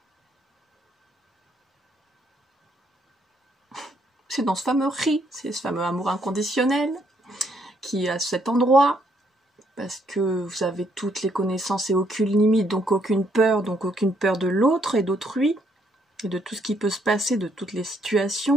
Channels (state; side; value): normal; both; correlation 0.71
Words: C'est dans ce fameux riz, c'est ce fameux amour inconditionnel qui est à cet endroit, parce que vous avez toutes les connaissances et aucune limite, donc aucune peur de l'autre et d'autrui, et de tout ce qui peut se passer, de toutes les